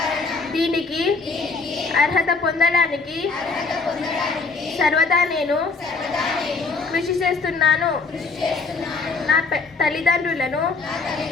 దీనికి అర్హత పొందడానికి సర్వదా నేను కృషి చేస్తున్నాను. నా తల్లిదండ్రులను,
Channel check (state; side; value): quieter; right; 4.2 dB